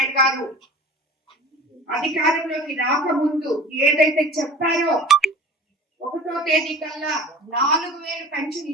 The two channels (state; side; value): normal; both; correlation 0.40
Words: గారు అధికారంలోకి రాకముందు ఏదైతే చెప్పారో 1వ తేదీ కల్లా 4000 పెన్షన్